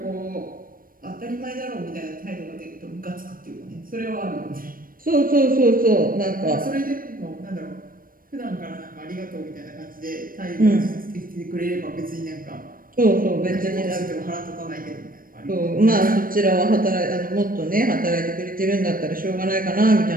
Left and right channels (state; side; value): late; left; 0.41 ms